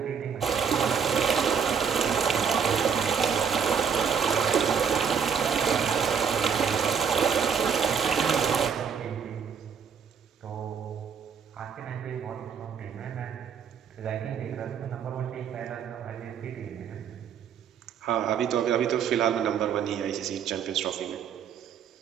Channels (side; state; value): left; quieter; 7.0 dB